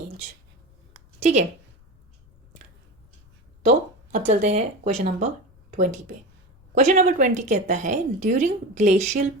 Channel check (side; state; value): left; noise; rumble, 30 dB below the sound